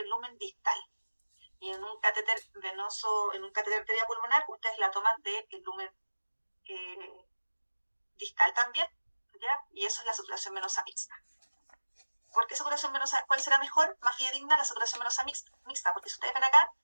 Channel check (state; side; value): inverted; both; correlation -1.00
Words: lumen distal. Y en un catéter venoso, en un catéter arteria pulmonar, ustedes la toman del lumen distal también, ¿ya? Y eso es la saturación venosa mixta. ¿Por qué saturación venosa? ¿Cuál será mejor? Más fidedigna la saturación venosa mixta, porque si ustedes ven acá,